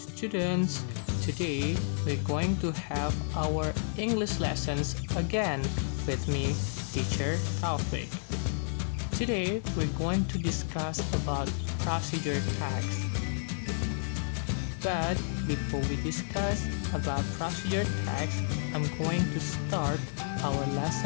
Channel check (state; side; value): silent; right; digital silence